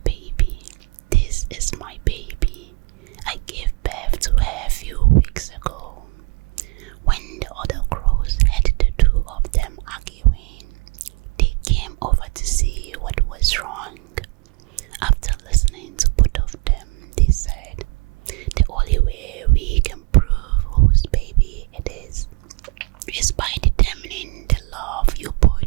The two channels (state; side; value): quieter; left; 30.3 dB